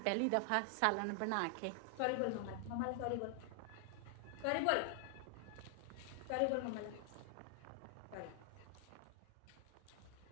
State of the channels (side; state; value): both; different; correlation 0.00